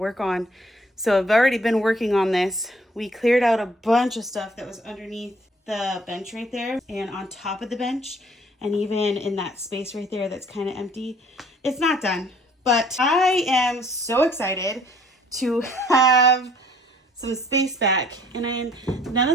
on. So I've already been working on this. We cleared out a bunch of stuff that was underneath the bench right there and on top of the bench. And even in that space right there that's kind of empty. It's not done. But I am so excited to have some space back, and none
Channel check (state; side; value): normal; both; correlation 0.59